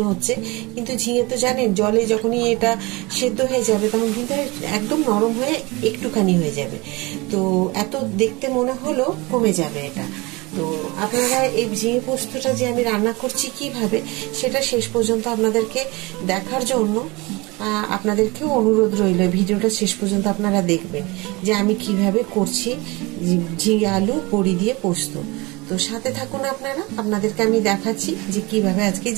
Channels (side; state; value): left; quieter; 24.4 dB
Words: হচ্ছে, কিন্তু ঝিঙে তো জানেন জলে যখনই এটা সেদ্ধ হয়ে যাবে তখন কিন্তু একদম নরম হয়ে একটুখানি হয়ে যাবে। তো এত দেখতে মনে হলো কমে যাবে এটা। তো আপনারা এই ঝিঙে পোস্তটা যে আমি রান্না করছি কিভাবে, সেটা শেষ পর্যন্ত আপনাদেরকে দেখার জন্য আপনাদেরকেও অনুরোধ রইল, ভিডিওটা শেষ পর্যন্ত আপনারা দেখবেন যে আমি কিভাবে করছি ঝিঙে আলু বড়ি দিয়ে পোস্ত। তো সাথে থাকুন আপনারা, আপনাদেরকে আমি দেখাচ্ছি যে কিভাবে আজকে